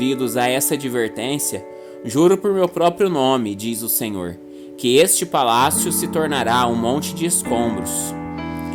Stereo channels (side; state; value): both; identical; correlation 1.00